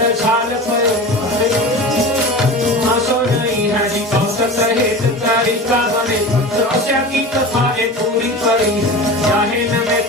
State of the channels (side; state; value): both; normal; correlation 0.32